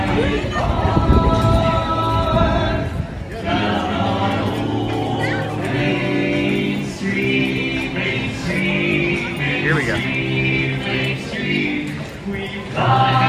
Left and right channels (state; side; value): identical; both; correlation 1.00